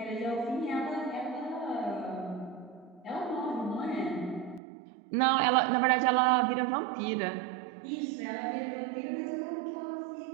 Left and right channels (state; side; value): drops out; left; at 4.6 s